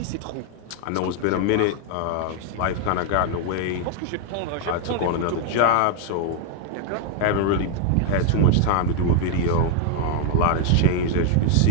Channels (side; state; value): both; different; correlation 0.00